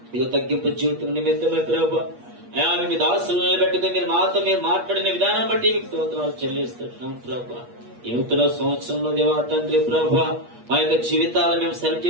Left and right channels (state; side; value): late; left; 8.4 ms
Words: ఇదిగో తగ్గింపు జీవితం నిమిత్తమే ప్రభా అయా మీ దాసులు నిలబెట్టుకుని మీరు మాతో మీరు మాట్లాడిన విధానం బట్టి మీకు స్తోత్రాలు చెల్లిస్తున్నాం ప్రభా. ఈ నూతన సంవత్సరంలో దేవా తండ్రి ప్రభా మా యొక్క జీవితాలను మేము సరి